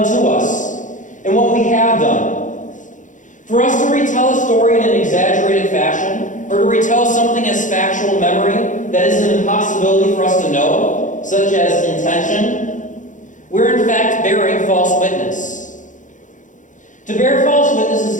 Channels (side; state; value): right; late; 0.37 ms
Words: to us and what we have done. For us to retell a story in an exaggerated fashion, or to retell something as factual memory that is an impossibility for us to know, such as intention, we're in fact bearing false witness. To bear false witness